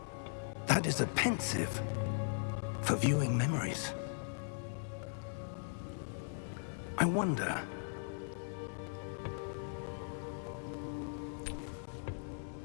That is a pensive for viewing memories. I wonder...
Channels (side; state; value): right; silent; digital silence